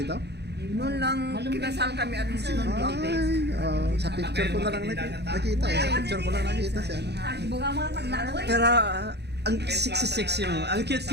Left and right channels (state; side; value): late; left; 0.49 ms